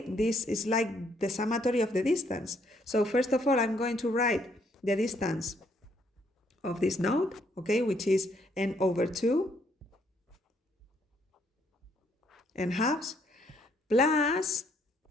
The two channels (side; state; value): both; normal; correlation 0.69